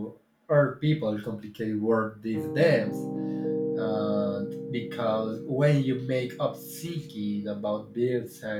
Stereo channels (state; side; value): identical; both; correlation 1.00